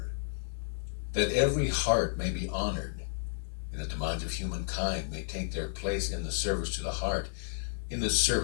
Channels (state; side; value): silent; right; digital silence